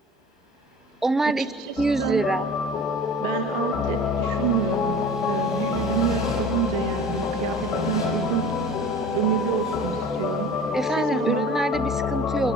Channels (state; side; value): normal; both; correlation 0.41